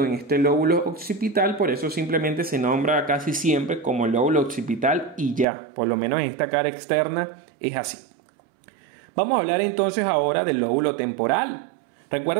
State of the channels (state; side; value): drops out; left; at 5.5 s